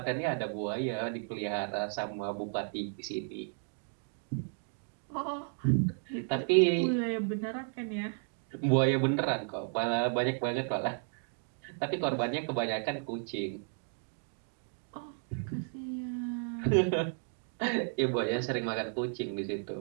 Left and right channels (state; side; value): silent; left; 55 dB below the other